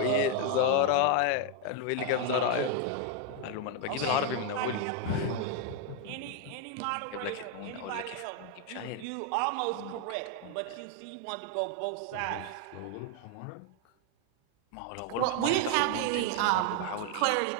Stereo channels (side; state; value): both; different; correlation 0.01